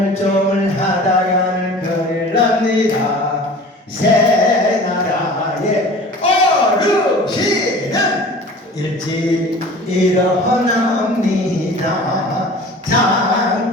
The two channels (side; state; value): both; normal; correlation 0.42